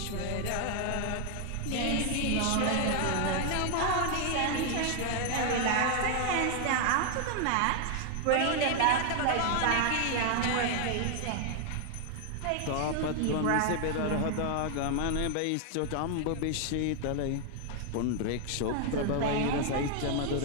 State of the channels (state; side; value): different; both; correlation 0.00